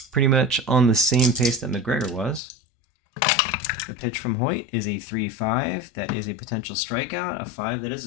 pretty much on the same pace that McGregor was. The pitch from Hoyt is a 3-5. That is a potential strikeout. A 5, that is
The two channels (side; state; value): right; drops out; at 2.4 s